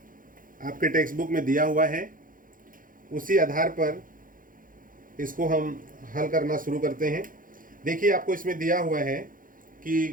आपके टेक्स्ट बुक में दिया हुआ है, उसी आधार पर इसको हम हल करना शुरू करते हैं। देखिए, आपको इसमें दिया हुआ है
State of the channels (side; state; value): left; late; 0.40 ms